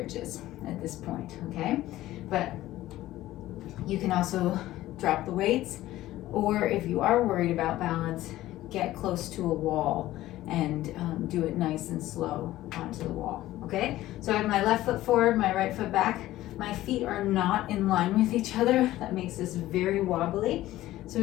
at this point, okay? But you can also drop the weights, or if you are worried about balance, get close to a wall and do it nice and slow onto the wall, okay? So I have my left foot forward, my right foot back. My feet are not in line with each other. That makes this very wobbly. So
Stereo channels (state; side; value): quieter; right; 15.4 dB